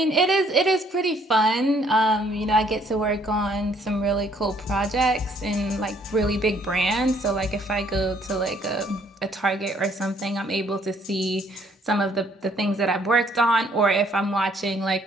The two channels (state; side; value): normal; both; correlation 0.64